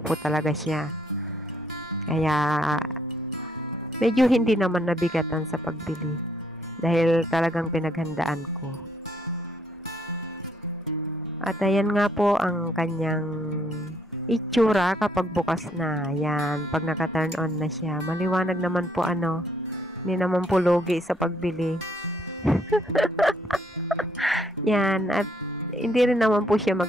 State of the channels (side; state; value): both; normal; correlation 0.69